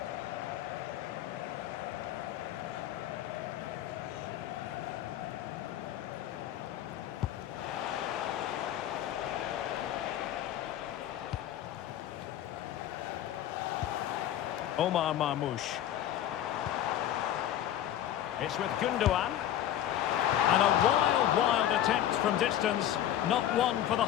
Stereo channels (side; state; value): right; quieter; 11.6 dB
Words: Omar Marmoush. It's with Gundogan. And a wild attempt from distance. Not one for the